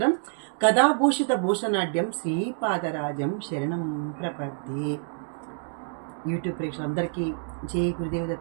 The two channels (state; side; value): silent; left; 60 dB below the other